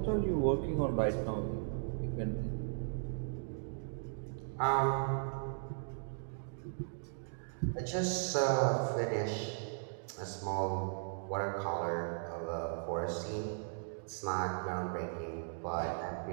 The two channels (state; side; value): silent; left; digital silence